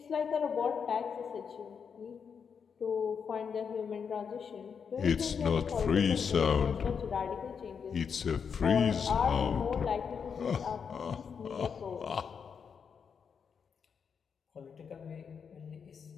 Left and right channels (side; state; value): right; quieter; 6.5 dB